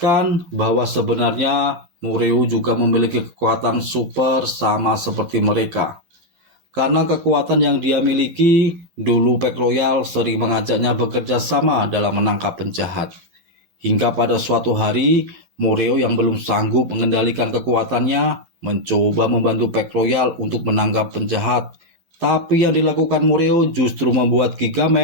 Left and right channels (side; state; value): left; late; 12 ms